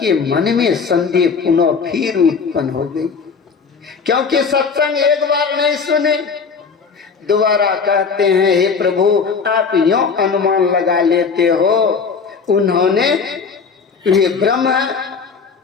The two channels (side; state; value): right; quieter; 5.5 dB